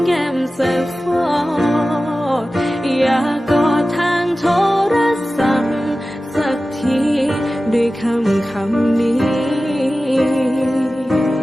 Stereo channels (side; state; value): both; normal; correlation 0.95